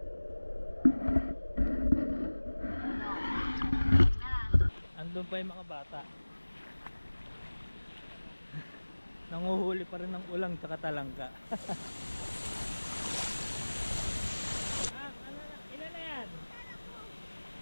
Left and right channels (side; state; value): both; inverted; correlation -1.00